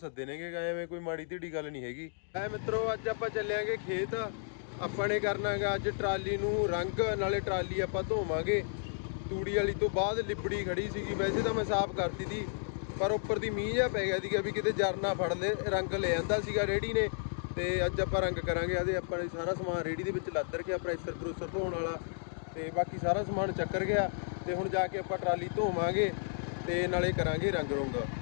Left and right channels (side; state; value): right; silent; digital silence